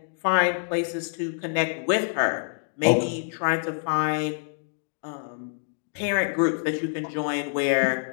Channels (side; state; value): right; silent; 61 dB below the other